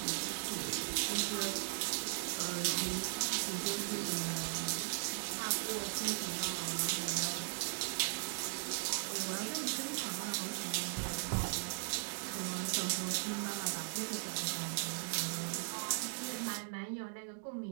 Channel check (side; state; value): left; silent; digital silence